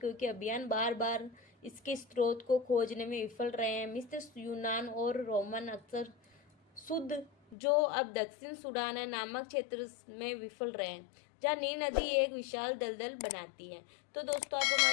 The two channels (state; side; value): drops out; right; at 7.6 s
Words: अभियान बार बार इसके स्रोत को खोजने में विफल रहे हैं। मिस्र, यूनान और रोमन अक्सर शुद्ध, जो अब दक्षिण सूडान है, नामक क्षेत्र में विफल रहे हैं, जहाँ नील नदी एक विशाल दलदल बनाती है। तो दोस्तों, आप